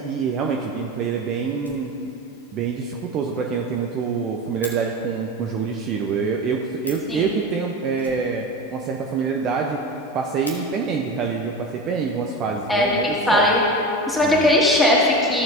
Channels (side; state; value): both; normal; correlation 0.27